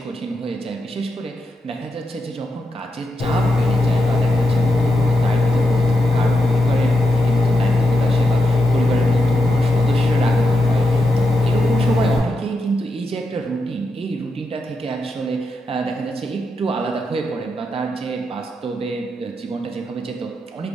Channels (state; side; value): normal; both; correlation 0.85